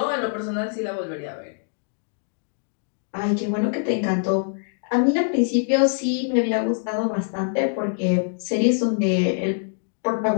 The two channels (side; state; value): right; silent; digital silence